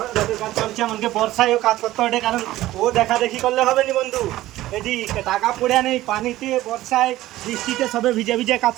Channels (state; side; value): quieter; left; 15.7 dB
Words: কাজ চলছে। আমাকে বর্ষায়ও কাজ করতে হবে, কারণ ও দেখা দেখি করলে হবে নি বন্ধু। এটি টাকা পড়ে নেই, পানিতে বর্ষায় বৃষ্টিতে সবে ভিজে ভিজে কাজ